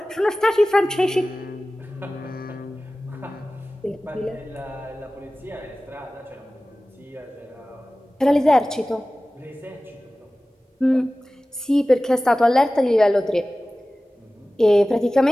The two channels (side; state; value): both; normal; correlation 0.97